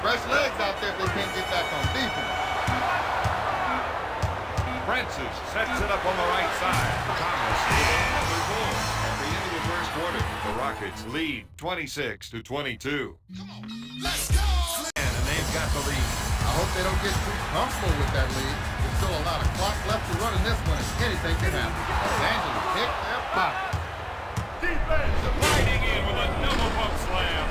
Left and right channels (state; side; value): identical; both; correlation 1.00